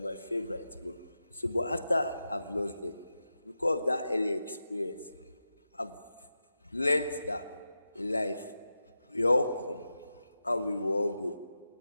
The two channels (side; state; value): both; inverted; correlation -0.91